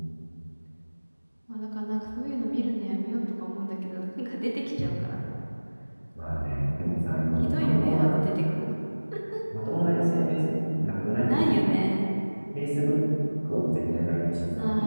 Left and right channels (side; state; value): both; inverted; correlation -1.00